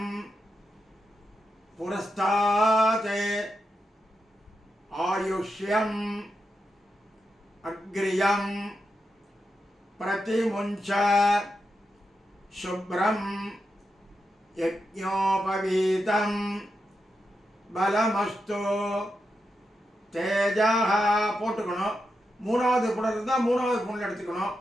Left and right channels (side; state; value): both; normal; correlation 0.87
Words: புரஸ்தாத் ஆயுஷ்யம் அக்ரியம் प्रतिमुञ्च शुभ्रं यज्ञोपवीतं बलमस्तु तेजः போட்டுக்கணும். மூணாவது புணல் இருந்தால் மூணாவது புணல் எடுத்துக்கணும்.